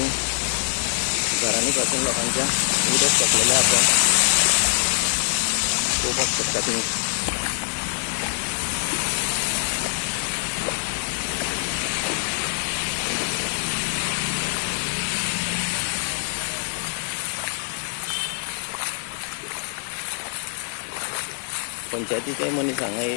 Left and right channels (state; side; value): silent; right; digital silence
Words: घरांनी पासून लोकांच्या उदक सोडलेलें आसा। पळोवपाक शकता तुम्ही। पंचायतीचे मनीस हांगा